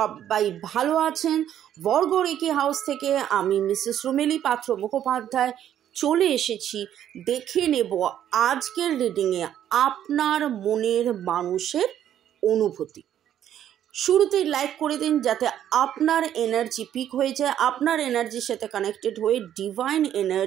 ভালো আছেন। বর্গরেখি হাউস থেকে আমি মিসেস রুমেলি পাত্র মুখোপাধ্যায় চলে এসেছি। দেখে নেব আজকের রিডিংয়ে আপনার মনের মানুষের অনুভূতি। শুরুতেই লাইক করে দিন যাতে আপনার এনার্জি পিক হয়ে যায়। আপনার এনার্জির সাথে কানেক্টেড হয়ে, ডিভাইন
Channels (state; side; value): quieter; left; 10.7 dB